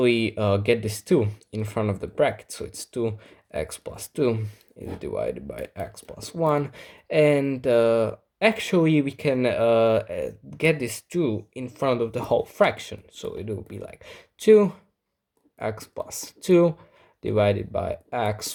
get this 2 in front of the bracket, so it's 2x plus 2 is divided by x plus 1, and actually we can get this 2 in front of the whole fraction, so it will be like 2x plus 2 divided by x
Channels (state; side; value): identical; both; correlation 1.00